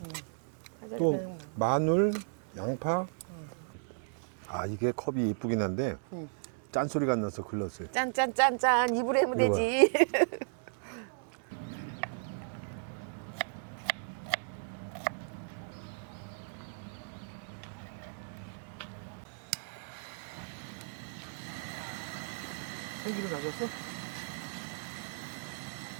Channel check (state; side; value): silent; left; digital silence